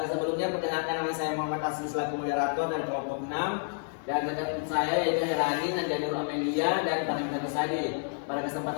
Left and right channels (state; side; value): silent; right; 58 dB below the other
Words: perkenalkan, nama saya Muhammad Asli selaku moderator dari kelompok 6, dan rekan saya yaitu Herani, Nandianur Amelia, dan Farida Nusadi. Pada